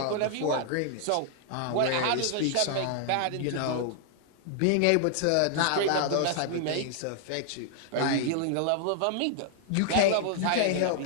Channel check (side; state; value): both; different; correlation 0.00